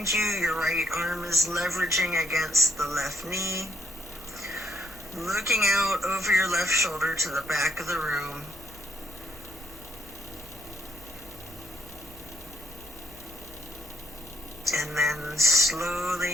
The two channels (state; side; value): normal; both; correlation 0.72